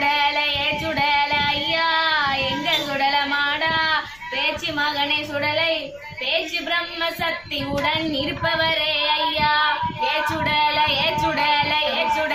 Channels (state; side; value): noise; left; rumble, 26 dB below the sound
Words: சுடல ஐயா எங்க சுடல மாடா பேச்சு மகனை சுடலை பேச்சு பிரம்ம சக்தியுடன் இருப்பவரே ஐயா சுடல சுடல